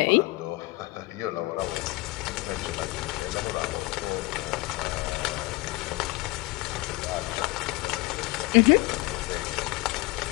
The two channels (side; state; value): right; quieter; 21.9 dB